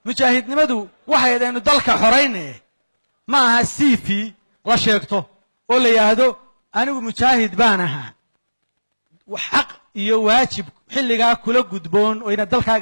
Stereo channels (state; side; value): inverted; both; correlation -1.00